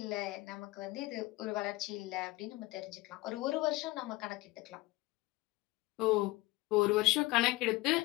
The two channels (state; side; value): quieter; right; 20.5 dB